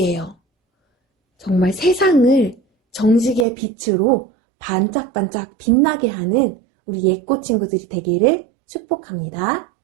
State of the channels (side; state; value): left; drops out; at 3.5 s